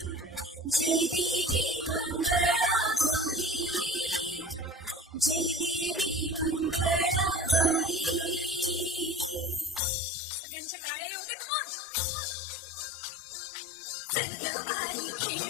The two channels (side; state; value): right; drops out; at 9.8 s